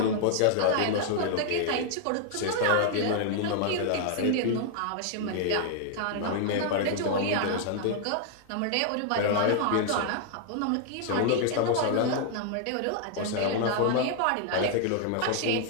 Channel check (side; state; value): both; different; correlation 0.00